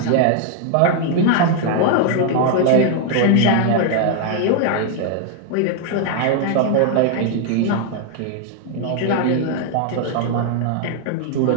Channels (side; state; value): both; different; correlation 0.00